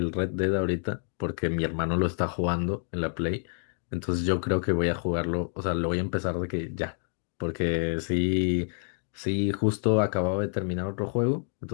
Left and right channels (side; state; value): right; silent; 59 dB below the other